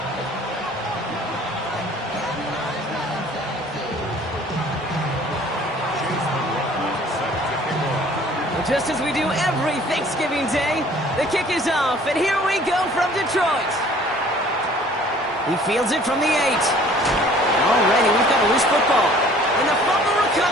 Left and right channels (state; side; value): normal; both; correlation 0.53